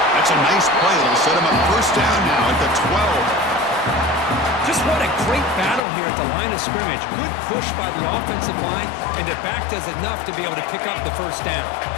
That's a nice play. It'll set him up 1st down now at the 12. Just what a great battle here at the line of scrimmage. Good push by the offensive line, and the back does enough to be able to pick up the 1st down.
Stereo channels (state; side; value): drops out; right; at 5.8 s